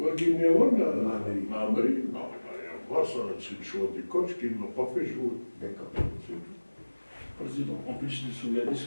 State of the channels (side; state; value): both; inverted; correlation -1.00